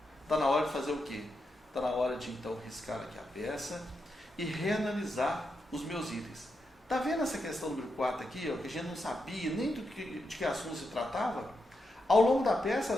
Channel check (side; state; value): both; normal; correlation 0.85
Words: Está na hora de fazer o quê? Está na hora de então riscar aqui a peça e reanalisar os meus itens. Está vendo essa questão número 4 aqui, ó, que a gente não sabia nem de que assunto se tratava? Ao longo da peça,